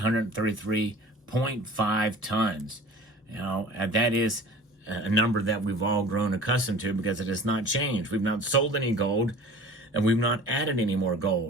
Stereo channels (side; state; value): both; normal; correlation 0.43